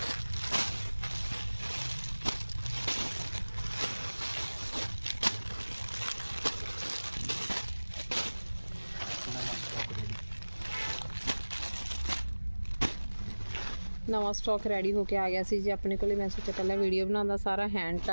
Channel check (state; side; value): inverted; both; correlation -1.00